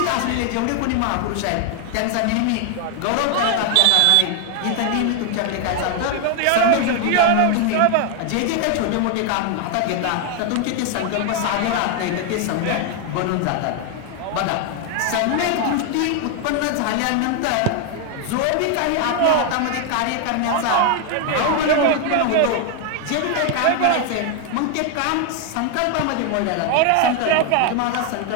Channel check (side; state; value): both; different; correlation 0.01